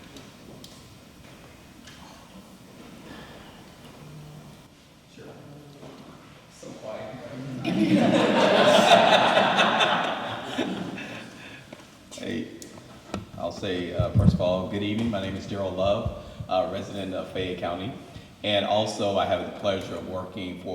So quiet. Hey, I'll say, first of all, good evening. My name is Gerald Love, resident of Fayette County. And also, I have the pleasure of working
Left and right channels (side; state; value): both; identical; correlation 1.00